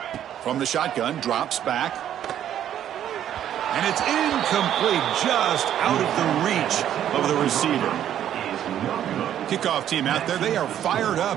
From the shotgun, drops back. And it's incomplete, just out of the reach of the receiver. Kickoff team out there, they are fired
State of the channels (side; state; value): left; quieter; 10.6 dB